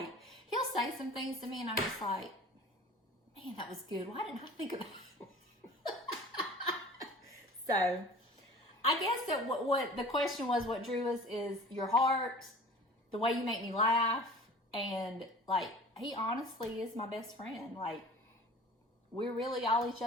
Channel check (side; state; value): both; normal; correlation 0.43